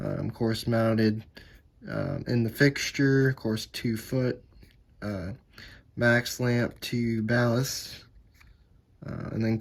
course mounted in the fixture, of course 2 foot, max lamp to ballast. And then of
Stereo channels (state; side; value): identical; both; correlation 1.00